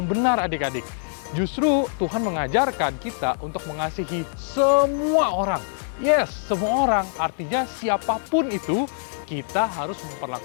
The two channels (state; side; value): silent; right; digital silence